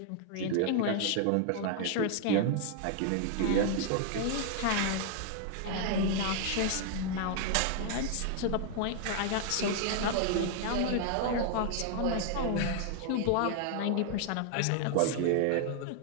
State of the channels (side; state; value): both; different; correlation 0.00